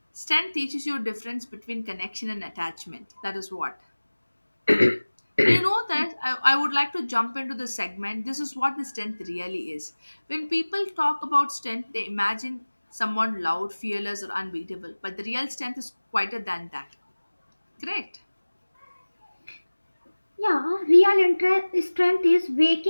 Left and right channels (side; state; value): both; inverted; correlation -1.00